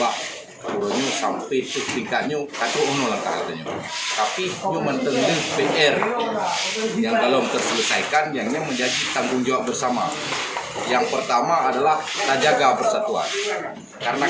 urunya sampai ke tingkatnya kata langkah katanya tapi nyu mentengah PR yang belum terselesaikan yang menjadi tanggung jawab bersama. Yang pertama adalah tak jaga persatuan karena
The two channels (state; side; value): identical; both; correlation 1.00